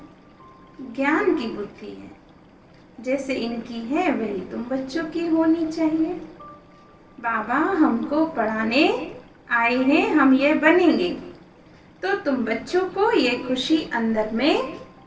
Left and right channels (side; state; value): both; identical; correlation 1.00